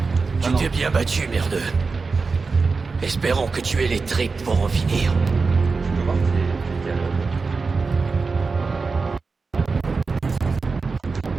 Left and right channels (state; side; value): quieter; left; 4.4 dB